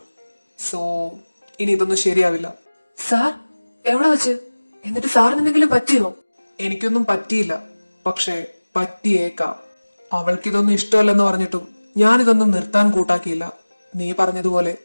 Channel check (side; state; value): both; inverted; correlation -1.00